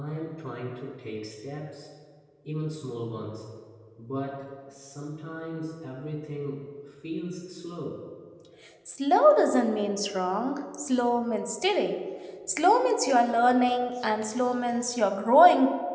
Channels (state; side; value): identical; both; correlation 1.00